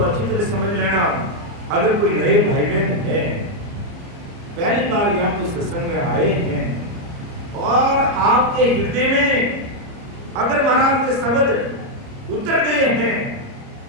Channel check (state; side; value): late; left; 30 ms